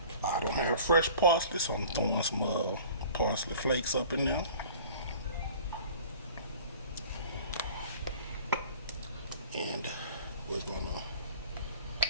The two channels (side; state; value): both; inverted; correlation -0.45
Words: I don't have fresh parsley, so I'm throwing some parsley flakes up in there. And we're gonna